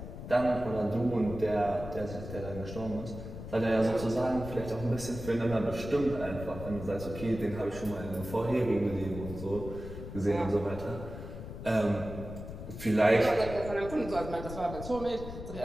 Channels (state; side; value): noise; left; rumble, 10 dB below the sound